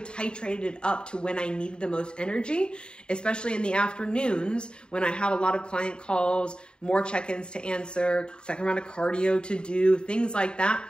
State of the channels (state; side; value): late; right; 0.050 ms